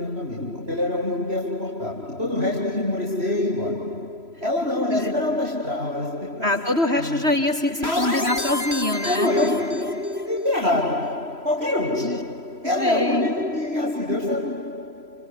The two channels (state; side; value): late; left; 3.0 ms